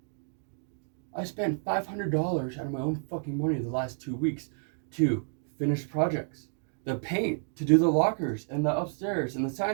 I spent $500 out of my own fucking money the last 2 weeks to finish projects. The paint, to do the lockers and the upstairs and the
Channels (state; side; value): silent; left; 58 dB below the other